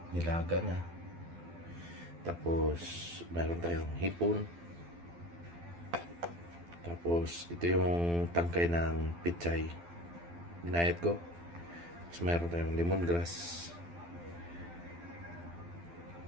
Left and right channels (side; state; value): left; late; 12 ms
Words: nilaga na. Tapos meron tayong hipon. Tapos ito yung tangkay ng pichay. Ginayat ko. Tapos meron tayong lemongrass,